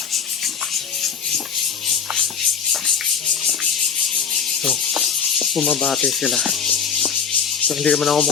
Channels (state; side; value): quieter; right; 6.9 dB